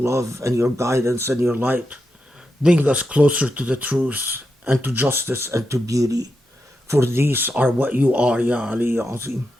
and your guidance and your light. Bring us closer to the truth and to justice and to beauty. For these are what you are, Ya Ali Ya Azim.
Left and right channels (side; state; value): both; normal; correlation 0.87